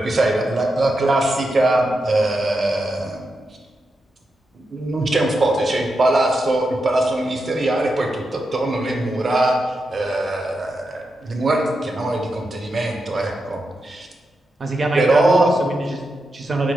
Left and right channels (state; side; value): normal; both; correlation 0.87